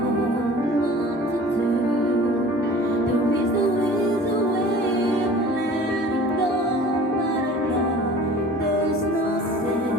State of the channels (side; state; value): both; normal; correlation 0.43